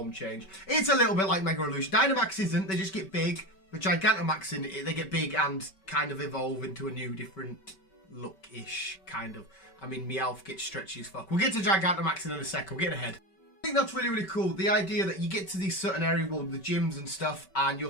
change. It's a little bit like Mega Evolution. Dynamax isn't. They just get big. But Gigantamaxing, they get big and kind of evolve into a new, different look-ish, kind of. I mean, Meowth gets stretchy as fuck. We'll get to Gigantamaxing in a second. We're getting ahead. I think that's really, really cool. The idea that you get to these certain areas, well, the gyms and stuff, and you'll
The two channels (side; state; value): right; late; 5.2 ms